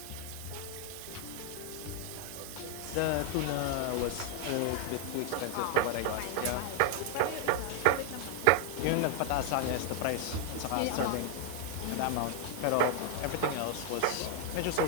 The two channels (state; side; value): different; both; correlation 0.00